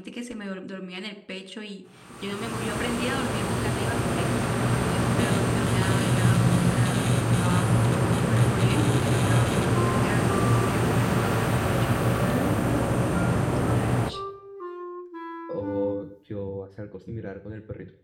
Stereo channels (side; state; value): both; identical; correlation 1.00